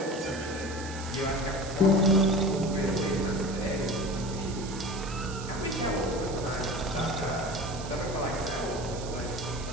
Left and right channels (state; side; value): noise; right; hiss, 13 dB below the sound